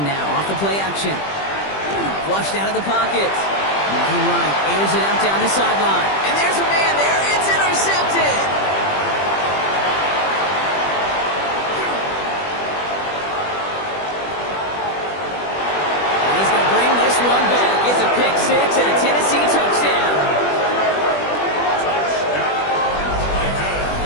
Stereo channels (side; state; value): right; late; 20 ms